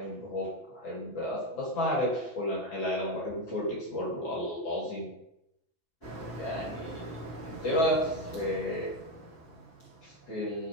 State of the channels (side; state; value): right; late; 6.0 ms